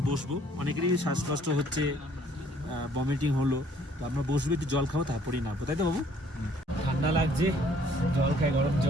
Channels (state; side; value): normal; both; correlation 0.60